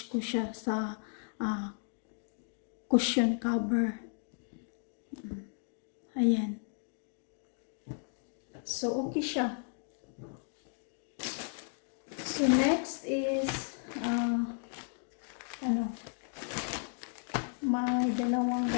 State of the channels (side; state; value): right; silent; 55 dB below the other